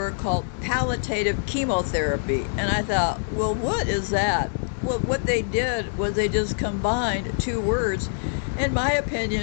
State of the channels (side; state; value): right; silent; digital silence